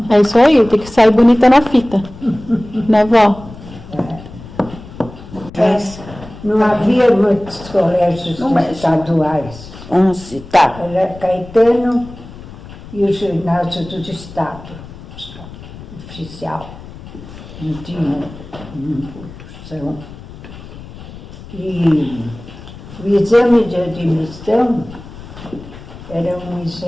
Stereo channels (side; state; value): left; noise; rumble, 16 dB below the sound